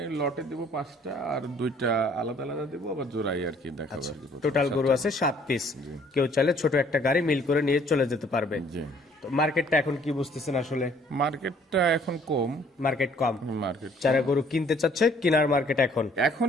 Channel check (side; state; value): both; normal; correlation 0.60